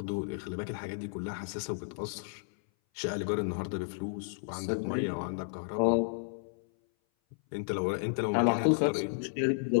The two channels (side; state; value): right; silent; 56 dB below the other